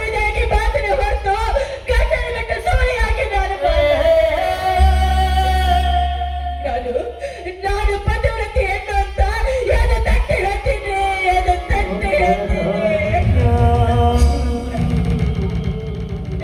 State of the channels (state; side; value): identical; both; correlation 1.00